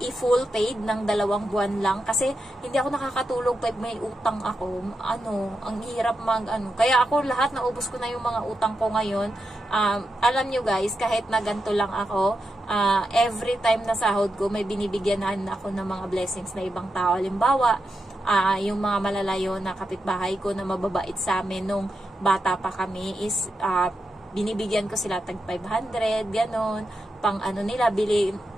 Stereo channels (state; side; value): normal; both; correlation 0.87